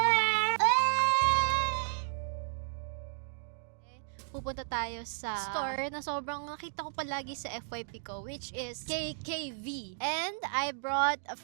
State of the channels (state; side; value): silent; left; digital silence